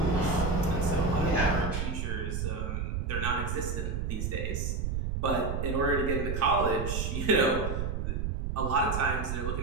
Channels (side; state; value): right; noise; rumble, 1 dB below the sound